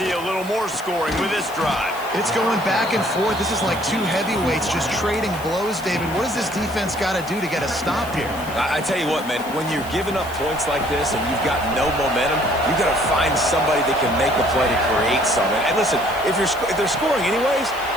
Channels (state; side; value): noise; left; hiss, 17 dB below the sound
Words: a little more scoring with this drive. It's going back and forth. This is like two heavyweights just trading blows, David. What does this defense got to do to get a stop here? I tell you what, man, when you're giving up points like this and you've got no momentum, you've got to find somebody that can make a play to create something. And listen, if they're scoring anyways,